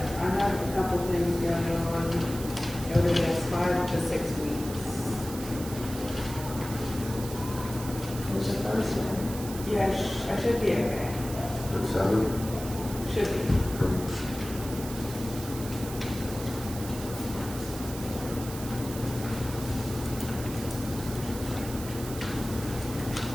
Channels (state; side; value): noise; right; hiss, 12 dB below the sound